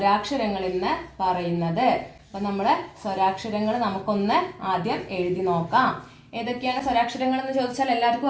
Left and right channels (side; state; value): both; identical; correlation 1.00